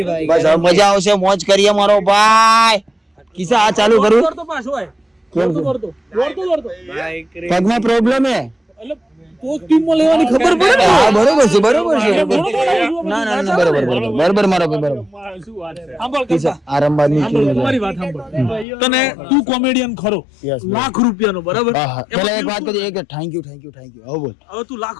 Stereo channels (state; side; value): drops out; right; at 18.7 s